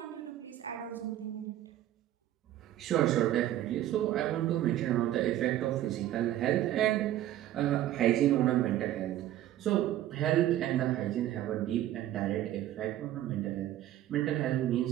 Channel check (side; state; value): left; quieter; 13.1 dB